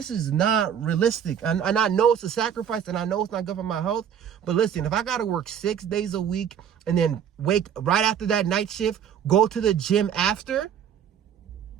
not realistic. And I know it's a sacrifice and I know it's not good for my health. But listen, if I got to work 6 days a week and then wake right after that night shift, go to the gym after,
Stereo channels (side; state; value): left; quieter; 8.7 dB